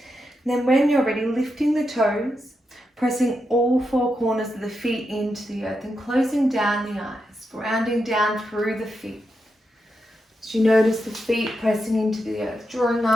And then when you're ready, lifting the toes, pressing all four corners of the feet into the earth and closing down the eyes, grounding down through the feet. As you notice the feet pressing into the earth, drawing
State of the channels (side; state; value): both; normal; correlation 0.86